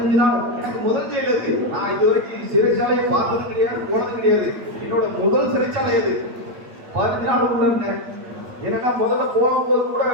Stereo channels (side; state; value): left; late; 8.7 ms